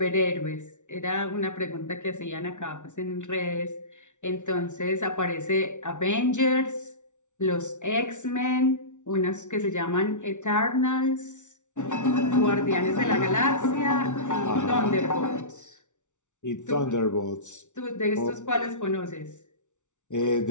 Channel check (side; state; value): right; late; 0.85 ms